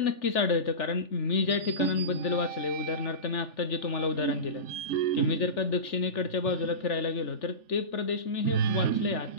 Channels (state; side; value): late; right; 3.4 ms